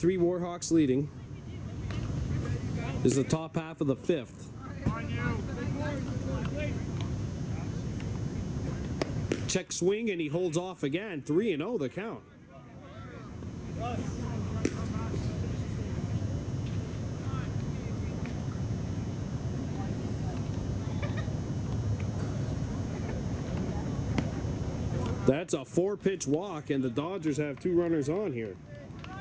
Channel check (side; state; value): both; identical; correlation 1.00